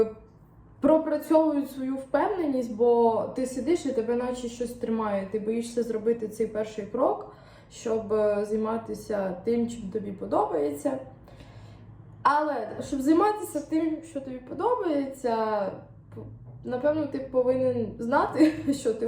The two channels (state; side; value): identical; both; correlation 1.00